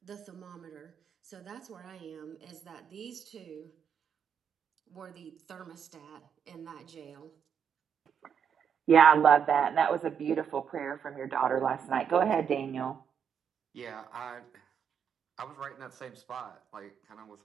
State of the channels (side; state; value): left; quieter; 7.6 dB